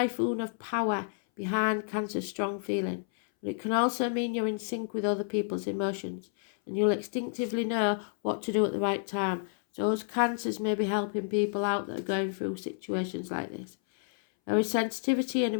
of power behind Cancer's strong feeling, but it can also mean you're in sync with other people's emotions, and you'll instinctively know what to do at the right time. So those Cancers may be helping people out that are going through situations like this. There is sensitivity and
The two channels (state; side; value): silent; right; 58 dB below the other